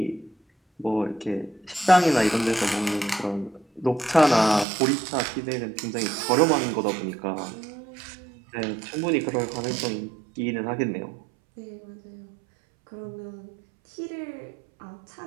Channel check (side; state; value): left; drops out; at 4.7 s